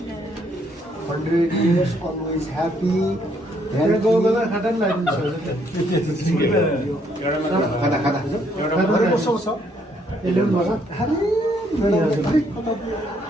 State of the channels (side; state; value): both; normal; correlation 0.69